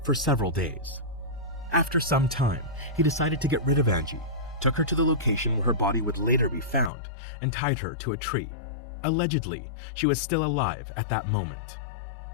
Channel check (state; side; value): drops out; right; at 6.9 s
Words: for several days. After some time, he decided to get rid of Angie, took her to the location where her body would later be found, and tied her to a tree. Allegedly, she was still alive at that moment.